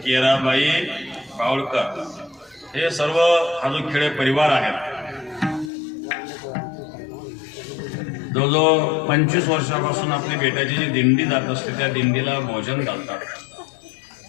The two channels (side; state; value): right; drops out; at 5.7 s